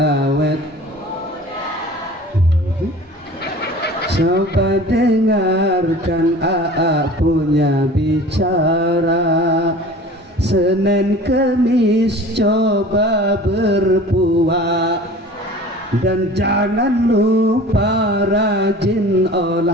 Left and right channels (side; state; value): both; normal; correlation 0.42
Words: coba dengarkan AA punya bicara. Senin Kemis coba berpuasa dan jangan lupa rajin